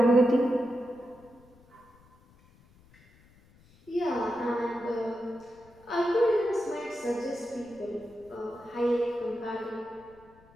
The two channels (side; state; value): left; noise; rumble, 28 dB below the sound